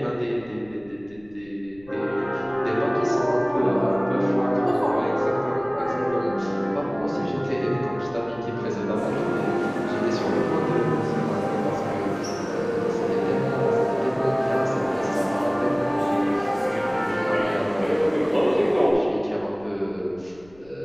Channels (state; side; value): noise; left; rumble, 26 dB below the sound